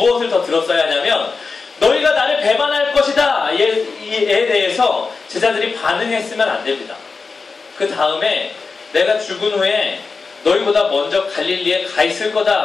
더 들었어야 하냐면 너희가 나를 배반할 것이다 에 대해서 제자들이 반응했으면 안 됩니다. 그 다음에 내가 죽은 후에 너희보다 먼저 갈릴리에 가 있을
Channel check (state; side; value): quieter; right; 4.5 dB